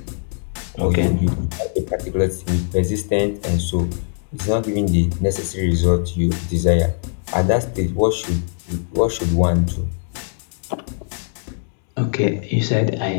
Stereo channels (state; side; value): silent; right; digital silence